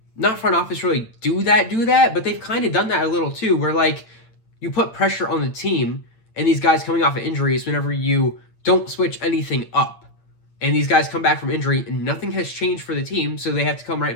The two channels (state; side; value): late; right; 8.9 ms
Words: not front office really do that, but they've kind of done that a little too, where, like, you put pressure on the team and these guys coming off of injuries whenever you don't switch anything up. And these guys come back from injury and nothing has changed for the team, so they have to come right